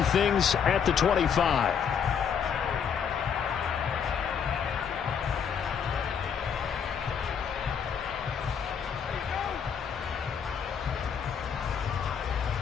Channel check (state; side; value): quieter; right; 7.3 dB